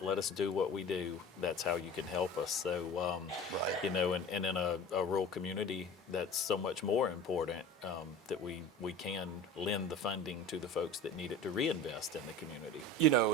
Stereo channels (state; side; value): normal; both; correlation 0.37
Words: us do what we do. That's how you can help us. So, you know, and in a rural community, that's so much more important that we can lend the funding to the folks that need it to reinvest in the community. You know,